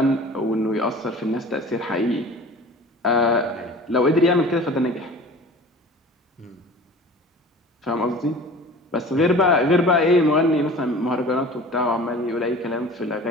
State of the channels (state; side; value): normal; both; correlation 0.42